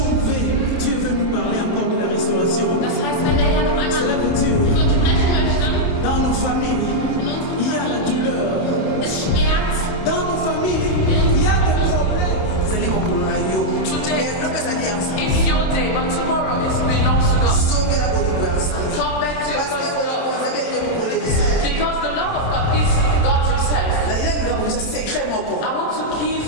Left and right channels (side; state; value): right; late; 27 ms